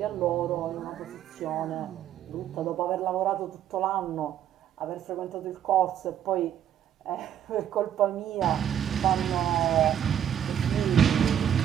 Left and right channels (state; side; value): quieter; left; 10.0 dB